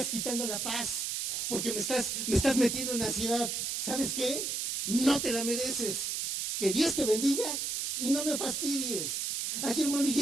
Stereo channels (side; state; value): right; noise; hiss, 1 dB below the sound